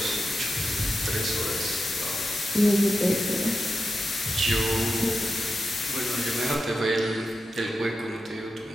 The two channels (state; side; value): normal; both; correlation 0.90